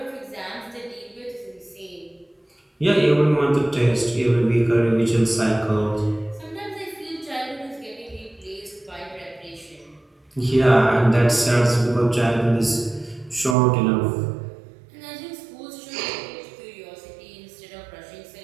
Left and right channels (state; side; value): drops out; left; at 13.6 s